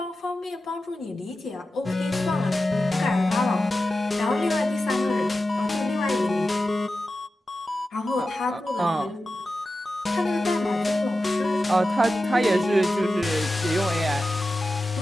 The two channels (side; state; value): both; normal; correlation 0.93